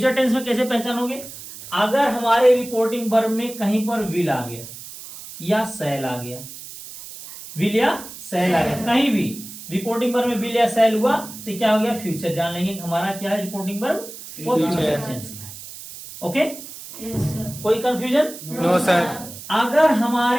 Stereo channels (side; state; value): right; noise; hiss, 14 dB below the sound